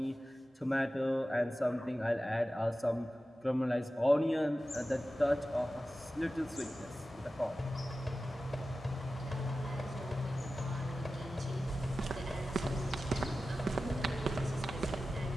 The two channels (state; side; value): normal; both; correlation 0.94